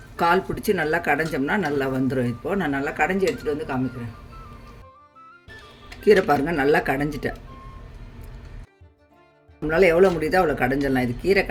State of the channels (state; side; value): identical; both; correlation 1.00